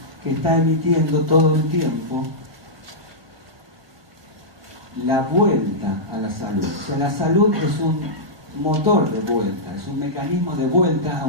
que está emitiendo todo el tiempo la vuelta a la salud. O sea, la salud es un motor de vuelta, es un mecanismo de vuelta a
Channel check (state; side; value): late; left; 1.2 ms